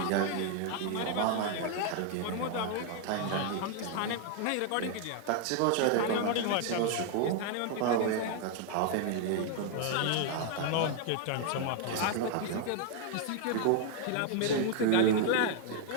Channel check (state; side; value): different; both; correlation 0.00